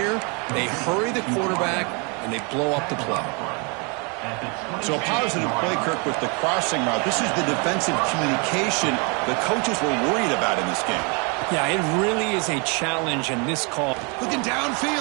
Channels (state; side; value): quieter; left; 33.1 dB